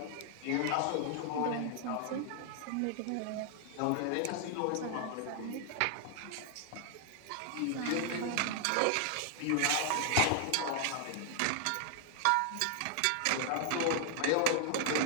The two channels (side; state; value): both; different; correlation 0.00